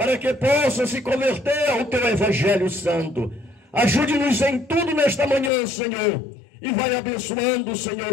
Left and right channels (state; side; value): drops out; right; at 5.5 s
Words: que possa se converter ao teu Evangelho Santo. Ajude-nos em tudo nesta manhã, Senhor, e vai abençoando, Senhor,